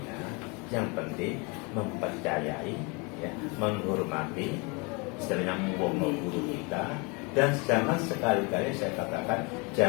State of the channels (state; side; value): quieter; right; 30.2 dB